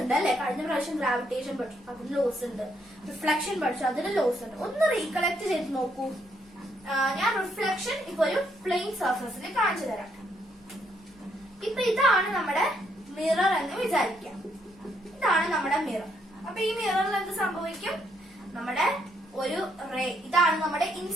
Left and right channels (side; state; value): both; normal; correlation 0.74